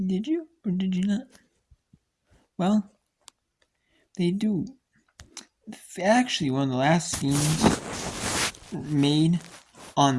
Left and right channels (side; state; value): both; identical; correlation 1.00